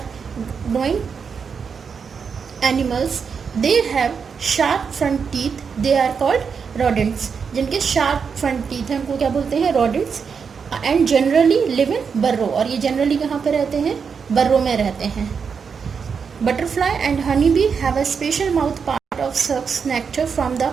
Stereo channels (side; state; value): left; quieter; 6.1 dB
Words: growing animals. They have sharp front teeth. They are called rodents. जिनके शार्प फ्रंट टीथ हैं उनको क्या बोलते हैं? Rodents. And generally live in burrow. और ये जनरली कहाँ पे रहते हैं? बर्रो में रहते हैं. Butterfly and honey bee have a special mouth part of sucks nectar from the